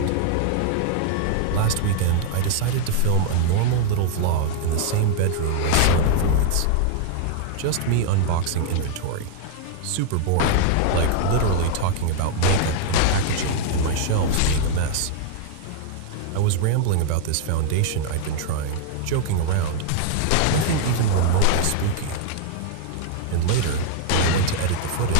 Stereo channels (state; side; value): different; both; correlation 0.00